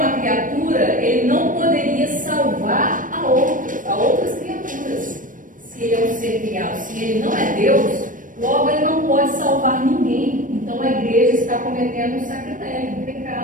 criatura, ele não poderia salvar a outras criaturas. Se ele é um ser criado, se ele não é Deus, logo ele não pode salvar ninguém. Então a igreja está cometendo um sacrilégio, um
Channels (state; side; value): late; left; 0.38 ms